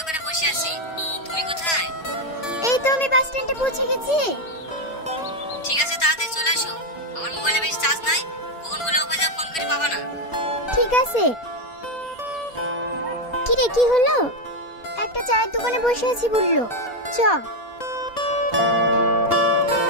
বসে আছি। তুমি কোথায়? এই তো আমি বাস স্ট্যান্ডে পৌঁছে গেছি। ঠিক আছে, তাড়াতাড়ি চলে আসো। আমার মোবাইলে বেশি চার্জ নাই, ফোনগুলো অফ হয়ে যাবে, ফোন করে পাবা না। ঠিক আছে। কি রে, কি হলো? একটা চায়ের দোকানে বসে আছি বললো, চ।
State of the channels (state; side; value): late; right; 4.3 ms